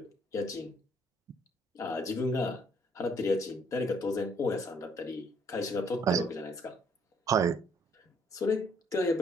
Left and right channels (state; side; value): normal; both; correlation 0.65